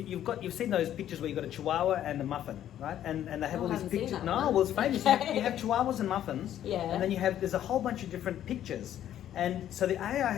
seen those pictures where you've got a chihuahua and a muffin, right? And they have all these pictures. It's famous. You have chihuahuas and muffins, and then there's a whole bunch of different pictures. And so the AI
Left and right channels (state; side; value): quieter; right; 11.3 dB